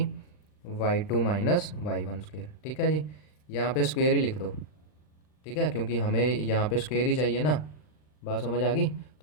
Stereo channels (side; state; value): right; late; 39 ms